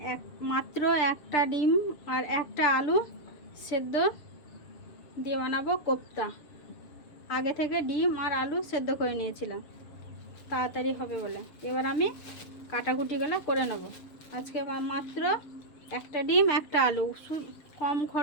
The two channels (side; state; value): right; late; 7.0 ms